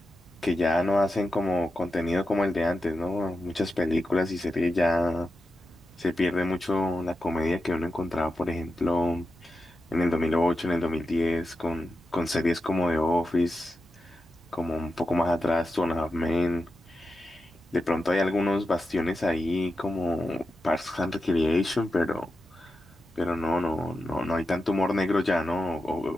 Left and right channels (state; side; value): normal; both; correlation 0.89